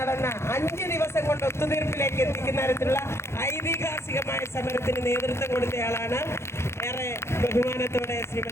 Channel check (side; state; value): right; late; 0.13 ms